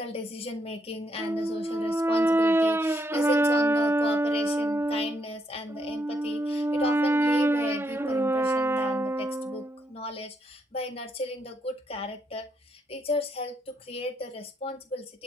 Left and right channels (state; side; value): normal; both; correlation 0.77